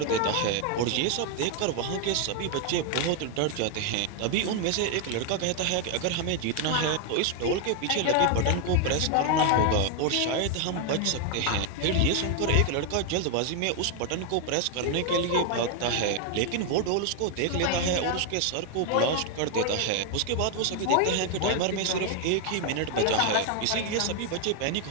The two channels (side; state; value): both; different; correlation 0.01